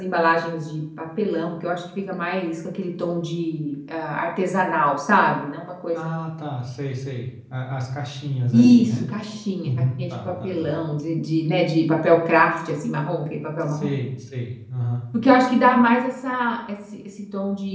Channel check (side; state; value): both; identical; correlation 1.00